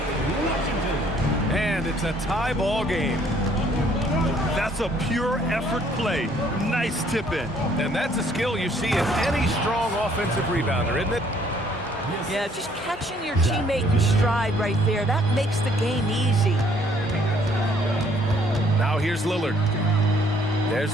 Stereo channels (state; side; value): normal; both; correlation 0.63